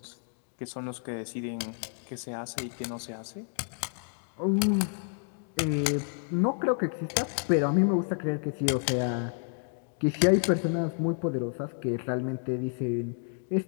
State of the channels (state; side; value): silent; right; 58 dB below the other